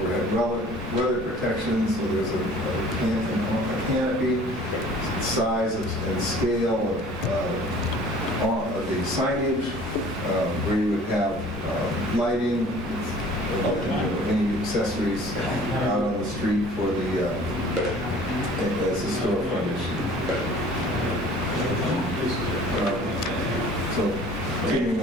weather protection, so there's a canopy, size and scale of the signage, where you would have lighting, any accessories out on the street for the, as a store frontage. So, continuing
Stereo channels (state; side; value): normal; both; correlation 0.49